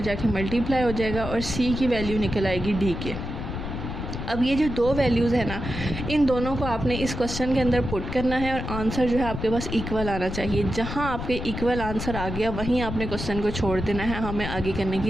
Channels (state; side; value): noise; left; rumble, 6 dB below the sound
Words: मल्टीप्लाई हो जाएगा, और c की वैल्यू निकल आएगी d के। अब ये जो दो वैल्यूज़ है ना, इन दोनों को आपने इस क्वेश्चन के अंदर पुट करना है, और आंसर जो है आपके पास इक्वल आना चाहिए। जहाँ आपके इक्वल आंसर आ गया वहीं आपने क्वेश्चन को छोड़ देना है, हमें आगे करने